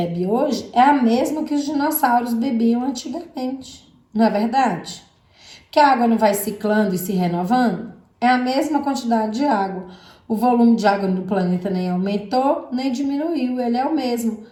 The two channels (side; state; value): both; identical; correlation 1.00